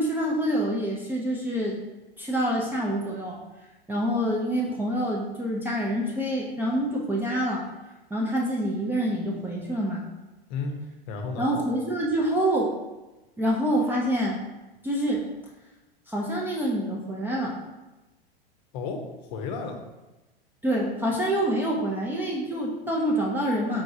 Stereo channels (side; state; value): both; normal; correlation 0.45